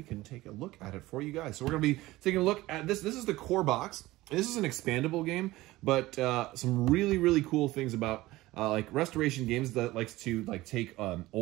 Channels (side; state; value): left; quieter; 18.3 dB